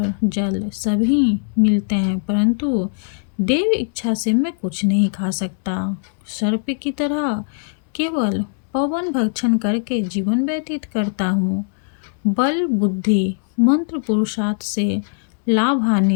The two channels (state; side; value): silent; right; digital silence